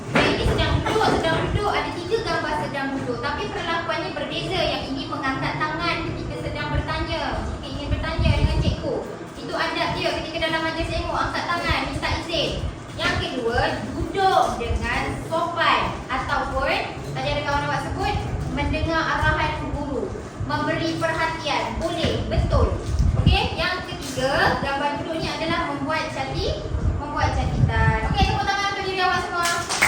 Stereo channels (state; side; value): identical; both; correlation 1.00